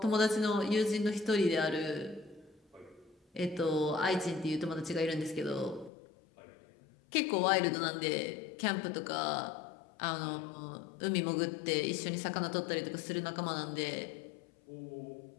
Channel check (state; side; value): drops out; right; at 5.9 s